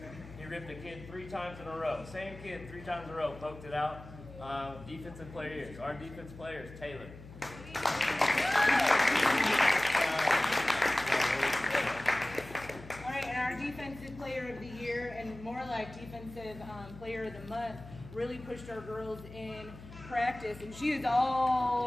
He ripped a kid 3 times in a row. Same kid 3 times in a row, poked it out. Defensive player years. Our defense player is Taylor. All right, and our defensive player of the year, and more like defensive player of the month, really pushed our girls in practice, and she is all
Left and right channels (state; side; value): noise; left; hum, 16 dB below the sound